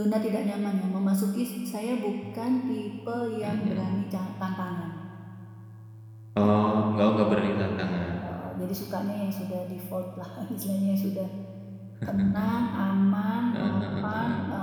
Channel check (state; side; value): identical; both; correlation 1.00